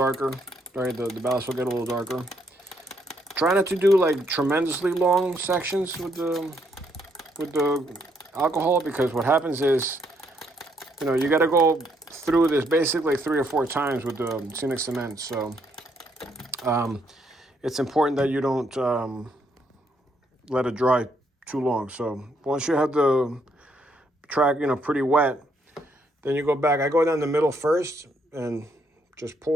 right? The ballast will get a little darker. Try not to do like tremendously long sections with the alcohol, because what happens is, you know, you got to go through this basically 3 or 4 times with the scenic cement. So it's important that you don't let it dry too long. So once you have the track, you know, pretty wet, then you go back. I go down the middle first and just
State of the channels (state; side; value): normal; both; correlation 0.72